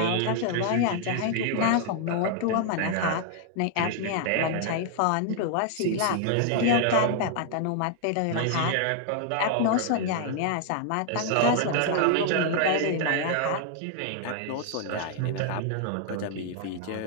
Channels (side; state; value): both; different; correlation 0.00